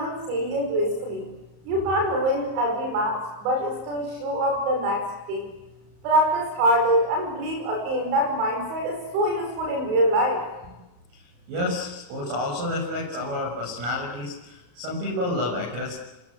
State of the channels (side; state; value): left; late; 34 ms